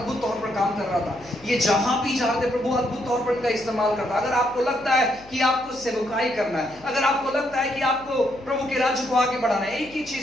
तौर पर काम कर रहा था। ये जहां भी जाते प्रभु अद्भुत तौर पर इनका इस्तेमाल करता। अगर आपको लगता है कि आपको सेवकाई करना है, अगर आपको लगता है कि आपको प्रभु के राज्य को आगे बढ़ाना है, एक ही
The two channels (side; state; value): left; noise; hum, 23 dB below the sound